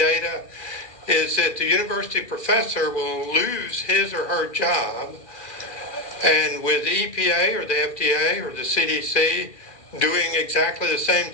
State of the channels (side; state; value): right; late; 2.4 ms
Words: is that the university professor will lose his or her job, and with the EPA or the FDA or the CDC doing exactly the same